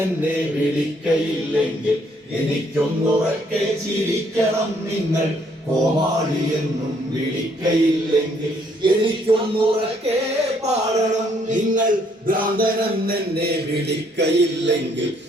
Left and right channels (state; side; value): normal; both; correlation 0.67